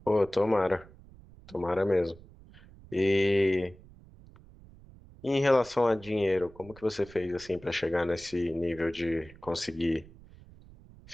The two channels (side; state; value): right; noise; rumble, 22 dB below the sound